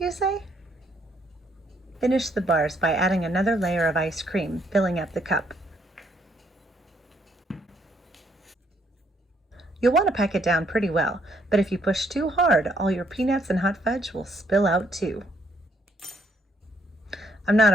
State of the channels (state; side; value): normal; both; correlation 0.70